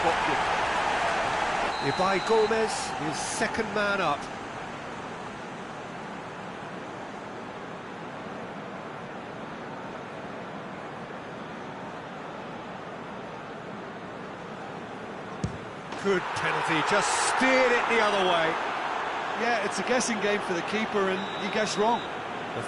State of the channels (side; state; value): both; identical; correlation 1.00